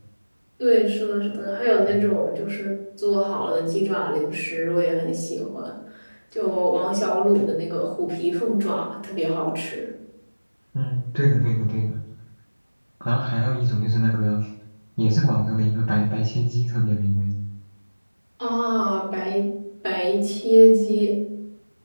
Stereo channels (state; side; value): inverted; both; correlation -1.00